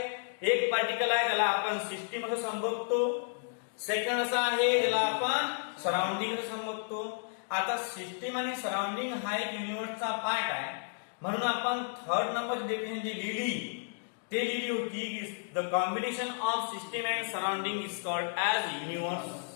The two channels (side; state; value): right; silent; digital silence